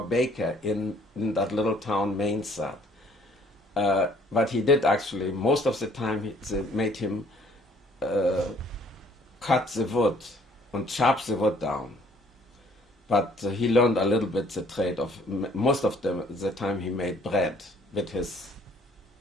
baker in that little town, Mainzat. But he did actually, most of the time, they made him cut the wood and chop the wood down. But he learned a little bit the trade of, most of the time he made bread with his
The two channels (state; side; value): normal; both; correlation 0.60